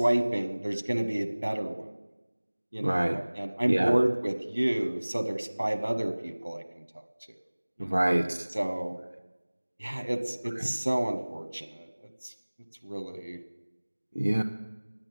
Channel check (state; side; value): inverted; both; correlation -1.00